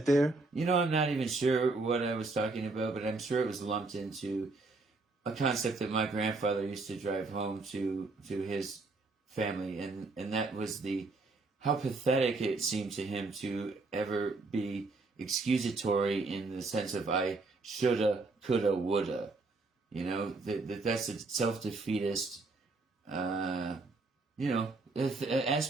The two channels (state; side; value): quieter; left; 3.5 dB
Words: there? I'm not even sure what I was talking about, but I'm sure it was lumped into a concept that my grandfather used to drive home to his family, and that was how pathetic it seemed to him to ever be excusatory in the sense of I shoulda, coulda, woulda. That's a self-defeatist, aspect.